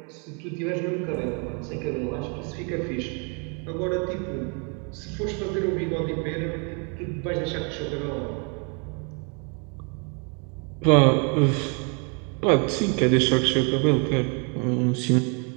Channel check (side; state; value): left; quieter; 35.9 dB